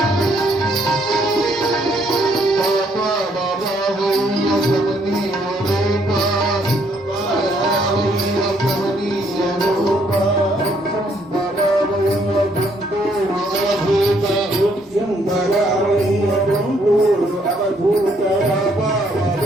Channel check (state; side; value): normal; both; correlation 0.69